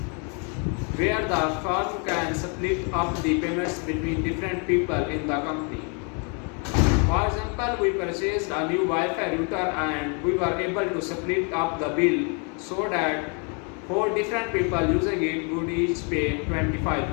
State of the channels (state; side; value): quieter; right; 36.7 dB